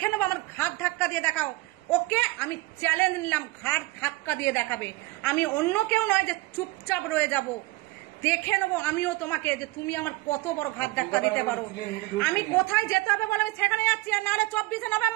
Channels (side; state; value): left; quieter; 20.9 dB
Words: নেবো। আমার ঘাট ধাক্কা দিয়ে দেখাও। ওকে, আমি চ্যালেঞ্জ নিলাম, ঘাট ধাক্কা দিয়ে দেখাবে। আমি অন্য কেউ নয় যে চুপচাপ রয়ে যাব। দেখে নেবো আমিও তোমাকে, যে তুমি আমার কত বড় ঘাট ধাক্কা দিতে পারো। আমি কোথায় যেতে হবে বলো, আমি সেখানে যাচ্ছি। আর নাহলে 24শে